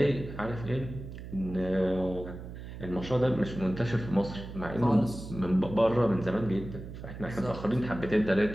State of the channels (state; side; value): noise; right; hum, 11 dB below the sound